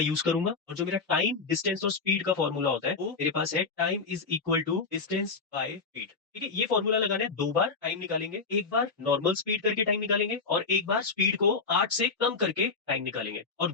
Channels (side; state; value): right; quieter; 4.6 dB